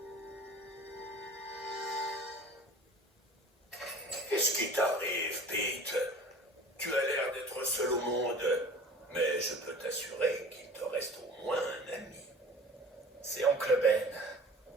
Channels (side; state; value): both; normal; correlation 0.42